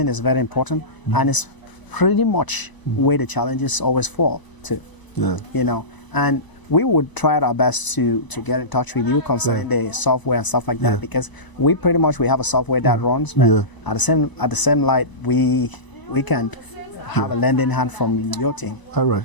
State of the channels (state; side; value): late; right; 1.0 ms